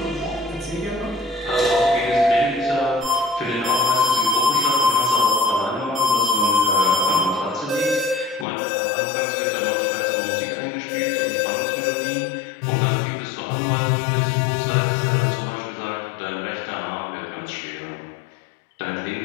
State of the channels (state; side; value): drops out; right; at 8.5 s